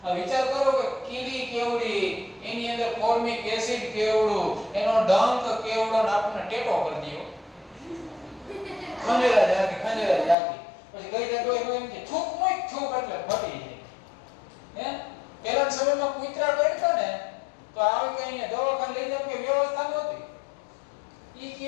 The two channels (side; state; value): right; drops out; at 10.4 s